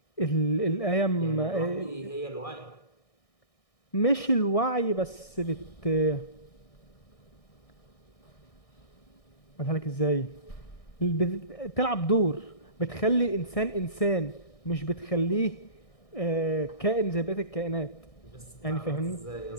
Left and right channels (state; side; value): late; right; 1.6 ms